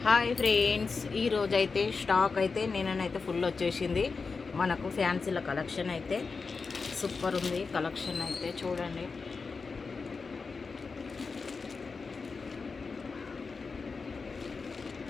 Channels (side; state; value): right; quieter; 4.6 dB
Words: Hi friends, ఈరోజు అయితే stock అయితే నేనైతే ఫుల్ వచ్చేసింది. మనకు ఫ్యాన్సీల కలెక్షన్ అయితే సూపర్ ఉంది. కలెక్షన్ అయితే చూడండి.